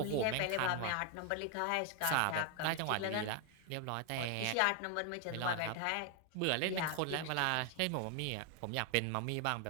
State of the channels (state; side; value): different; both; correlation 0.01